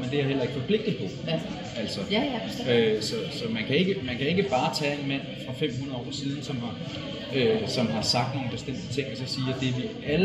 det er jeg heller ikke forpligtet på. Ja. Altså, så man kan ikke bare tage en mand fra 500 år siden, som har sagt nogle bestemte ting, og så sige, at det vi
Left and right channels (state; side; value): identical; both; correlation 1.00